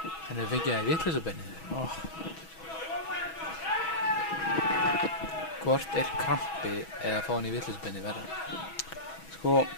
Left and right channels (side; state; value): right; late; 6.2 ms